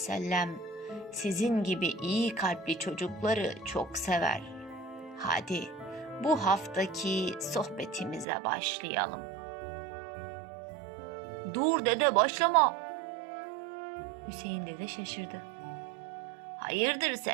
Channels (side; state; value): left; drops out; at 8.2 s